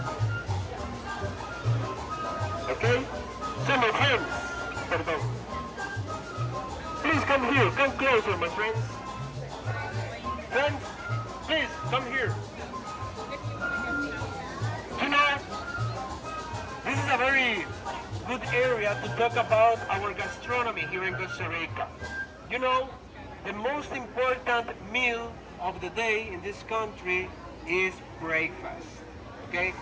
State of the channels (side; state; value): both; identical; correlation 1.00